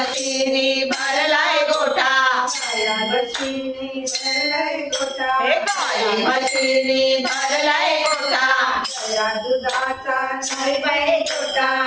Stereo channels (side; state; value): both; identical; correlation 1.00